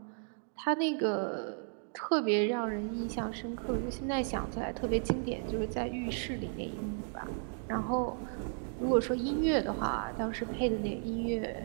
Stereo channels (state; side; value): silent; left; 55 dB below the other